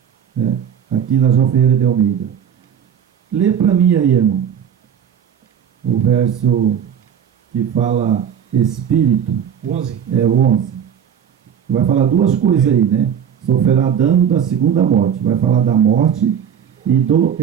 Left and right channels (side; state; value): left; quieter; 8.5 dB